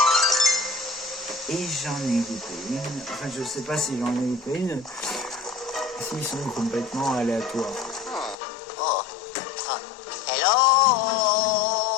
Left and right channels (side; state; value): right; drops out; at 8.3 s